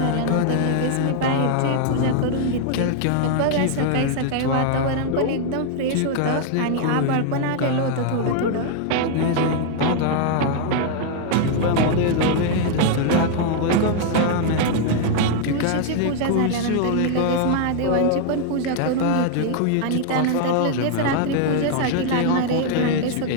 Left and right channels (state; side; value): different; both; correlation 0.00